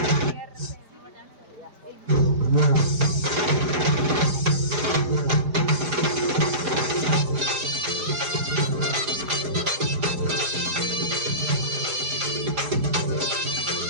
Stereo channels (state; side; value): late; left; 4.9 ms